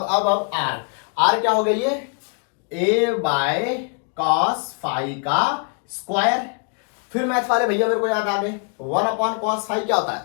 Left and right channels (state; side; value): quieter; right; 39.6 dB